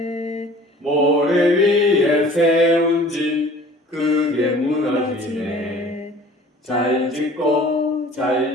모래 위에 세운 집 크게 무너지네. 잘 짓고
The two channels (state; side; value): normal; both; correlation 0.48